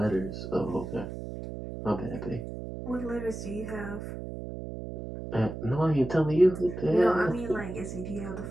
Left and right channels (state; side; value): noise; right; hum, 8 dB below the sound